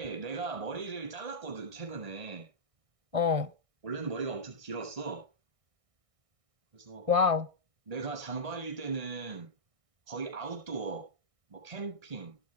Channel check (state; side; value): late; left; 1.6 ms